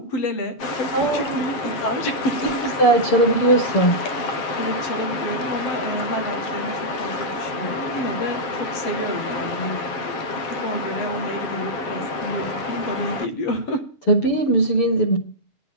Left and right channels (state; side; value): late; right; 7.4 ms